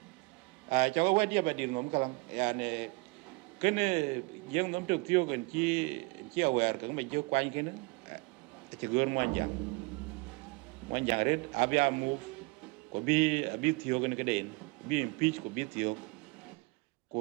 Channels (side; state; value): left; quieter; 27.7 dB